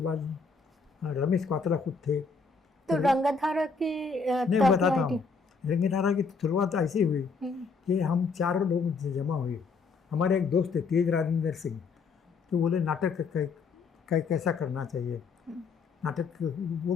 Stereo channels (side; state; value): right; quieter; 4.7 dB